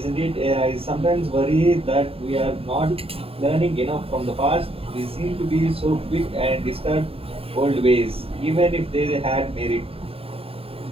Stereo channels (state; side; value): late; left; 0.27 ms